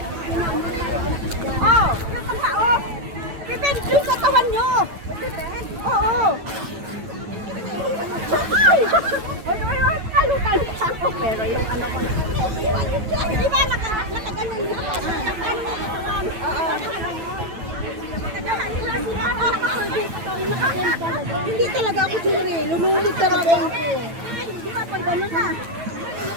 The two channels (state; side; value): late; left; 9.1 ms